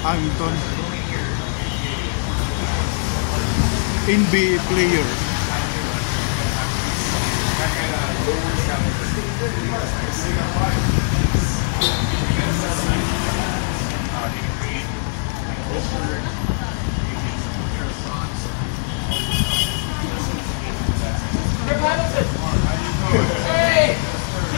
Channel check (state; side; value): silent; right; 58 dB below the other